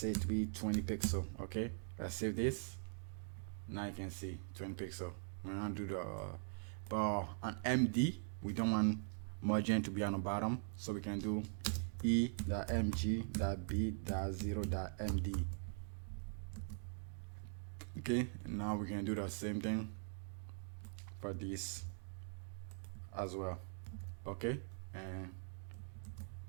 to be 20 pixel. Okay, let's save this. Now you can see 20 pixel. We're gonna do the but on MD we don't want margin to be on the bottom, so we can do E, the MG, the B, the 0, the MD. Okay, now we can do the same thing for this as well. Okay, and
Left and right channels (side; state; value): left; silent; digital silence